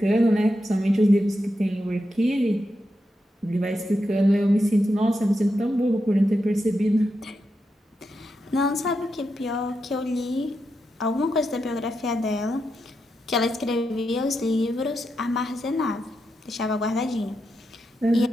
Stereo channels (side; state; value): both; normal; correlation 0.86